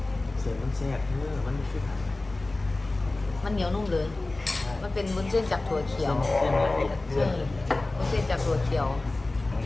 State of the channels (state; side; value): quieter; right; 3.0 dB